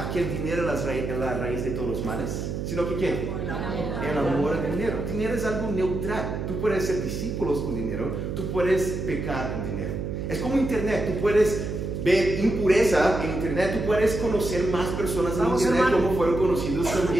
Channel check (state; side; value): noise; right; hum, 4 dB below the sound